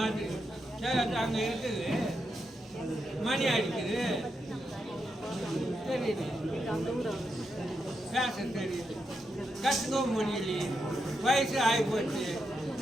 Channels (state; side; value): normal; both; correlation 0.84